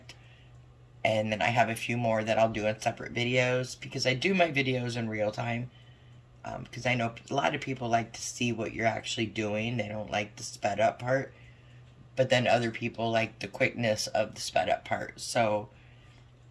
and then I have a few more that I'll do in separate videos, because I do my videos in real time, because I know a lot of people like to see what you're actually doing. They don't like the sped up part, but then other people like the quickness of the sped up part. So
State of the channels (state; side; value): identical; both; correlation 1.00